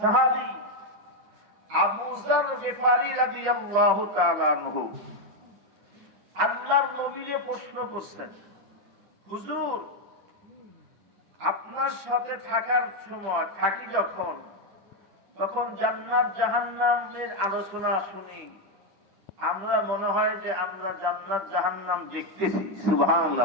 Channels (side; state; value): left; late; 10 ms